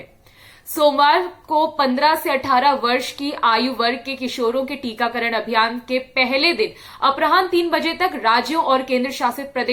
सोमवार को 15 से 18 वर्ष की आयु वर्ग के किशोरों के टीकाकरण अभियान के पहले दिन अपराह्न 3 बजे तक राज्यों और केंद्र शासित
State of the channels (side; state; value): both; identical; correlation 1.00